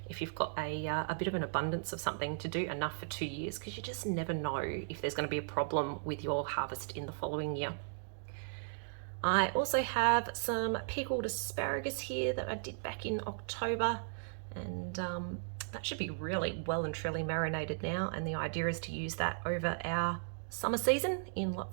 if you've got a bit of an abundance of something to do enough for 2 years, because you just never know if there's going to be a problem with your harvest in the following year. I also have some pickled asparagus here that I did back in October, and that should be really well and truly marinated now, and the idea is to use that over our summer season in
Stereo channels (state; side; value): silent; left; digital silence